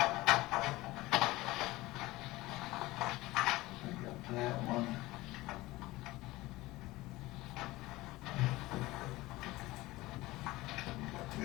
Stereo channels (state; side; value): quieter; right; 19.3 dB